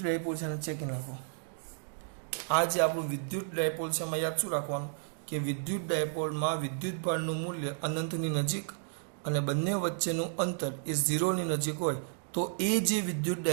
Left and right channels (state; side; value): silent; left; digital silence